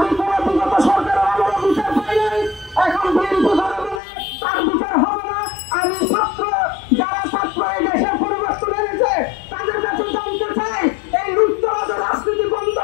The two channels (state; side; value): drops out; right; at 4.0 s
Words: কোনো বিগত সরকারের আমলে বিচার পাই নাই। এখন বিএনপি ধরে বলে তার বিচার হবে না। আমি যারা ছাত্র এই দেশের পরিবর্তন এনেছে তাদের কাছে জানতে চাই এই লুটতরাজের রাজনীতি বন্ধ